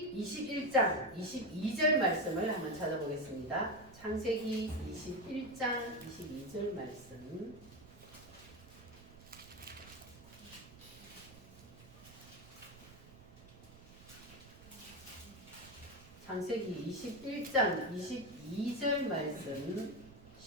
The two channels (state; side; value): noise; right; rumble, 19 dB below the sound